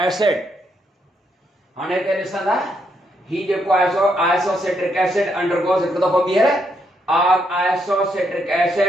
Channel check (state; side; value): normal; both; correlation 0.77